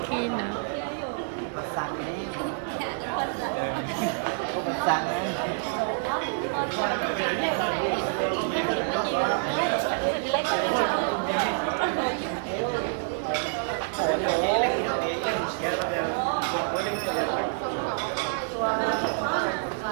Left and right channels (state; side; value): silent; left; digital silence